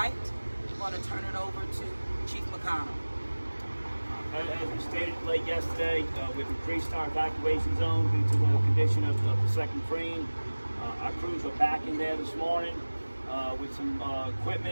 I'm going to turn it over to Chief McConnell. As we stated late yesterday, we've increased our evacuation zone due to the condition of the second crane. Our crews are back in there this morning with some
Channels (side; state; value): both; inverted; correlation -1.00